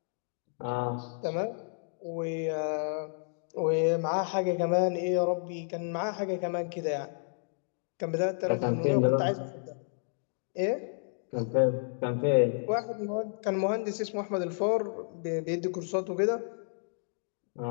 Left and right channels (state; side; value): silent; right; digital silence